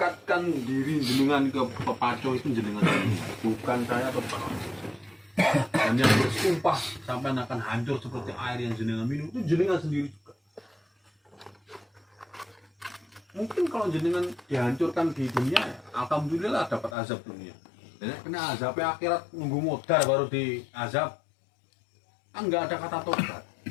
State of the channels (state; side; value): drops out; right; at 16.9 s